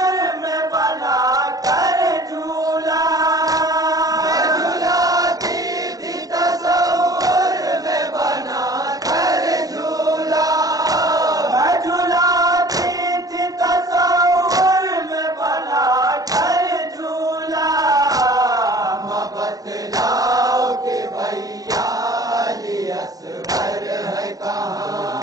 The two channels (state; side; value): late; left; 0.18 ms